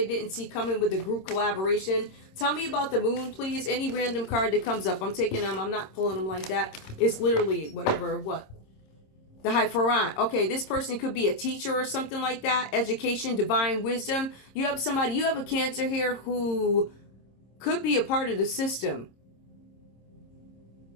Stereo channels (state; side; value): late; right; 26 ms